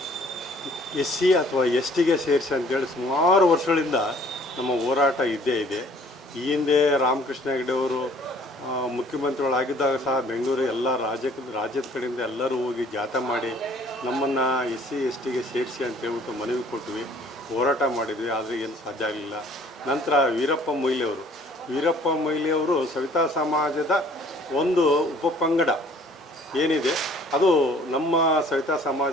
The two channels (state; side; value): normal; both; correlation 0.56